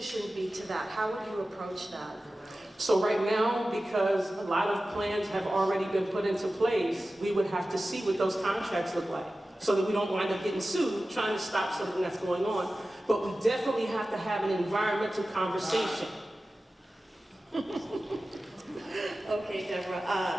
be to that? How would you approach that? So right now, because a lot of plans have already been put into place, we would have to see what those contracts look like so that we don't wind up getting sued trying to stop something that's going on. But we definitely have to have an environmental conversation. Okay,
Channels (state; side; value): normal; both; correlation 0.95